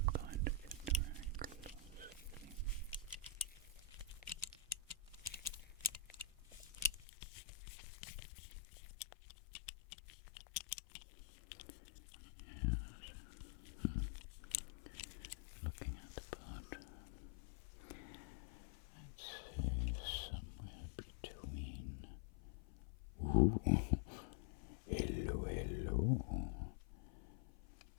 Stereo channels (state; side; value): drops out; right; at 7.1 s